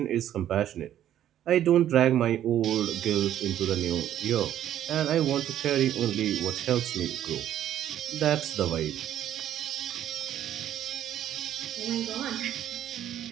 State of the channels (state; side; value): quieter; left; 11.3 dB